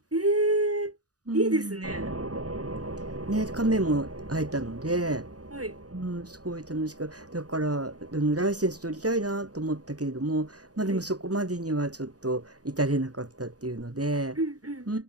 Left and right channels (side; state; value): left; late; 0.68 ms